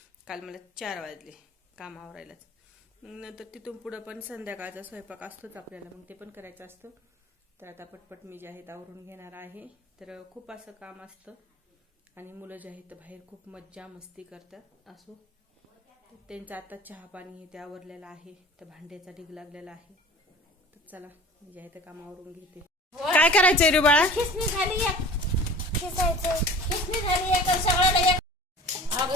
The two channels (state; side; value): normal; both; correlation 0.41